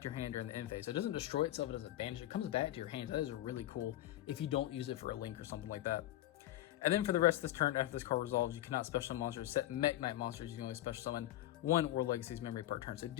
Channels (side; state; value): right; quieter; 14.5 dB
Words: to your hand during the end phase. So it doesn't destroy itself, it doesn't banish it, it comes back to your hand. That is really cool if you don't use it for a link or something like that. And then for the rest of this turn, after this card resolves, you cannot special summon monsters. Set Mekk-Knight monsters, you can only special summon 1 World Legacy's Memory per turn. So